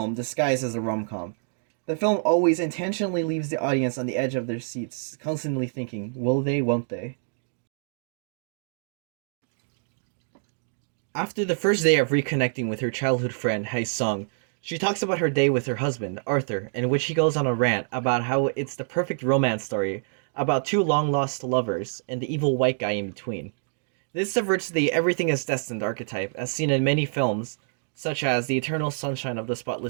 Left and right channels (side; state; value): left; silent; digital silence